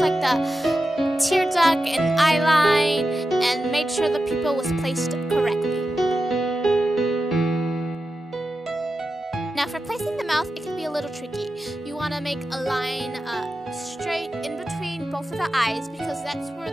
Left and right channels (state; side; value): normal; both; correlation 0.91